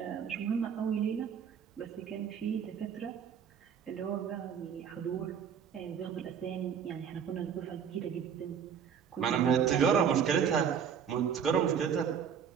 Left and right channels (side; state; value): left; quieter; 7.6 dB